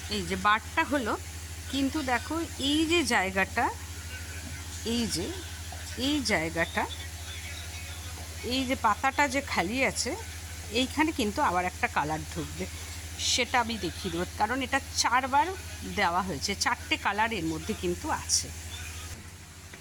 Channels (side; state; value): both; identical; correlation 1.00